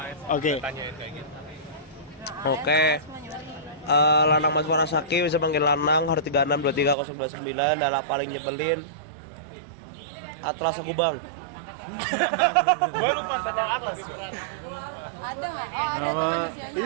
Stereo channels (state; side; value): drops out; left; at 7.0 s